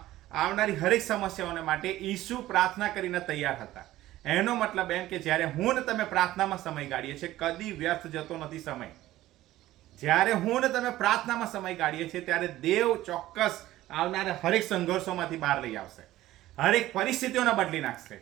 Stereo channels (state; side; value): quieter; left; 15.4 dB